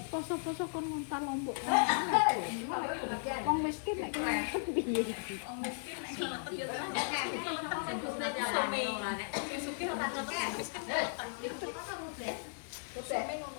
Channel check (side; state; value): right; silent; digital silence